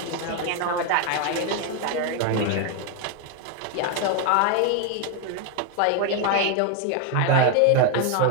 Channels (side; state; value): both; different; correlation 0.01